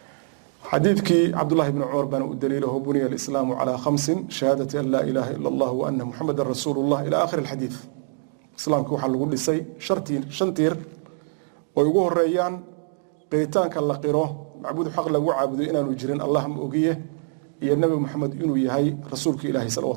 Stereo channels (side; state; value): left; silent; digital silence